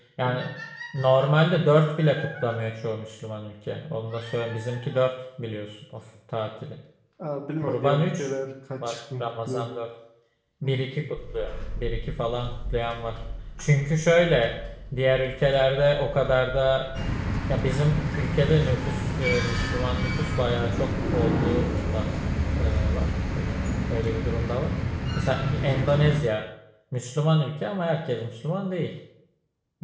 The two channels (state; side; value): identical; both; correlation 1.00